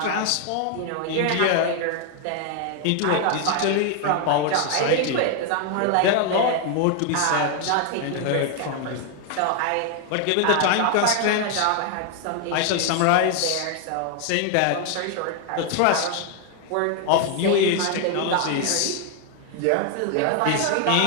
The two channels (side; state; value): both; different; correlation 0.00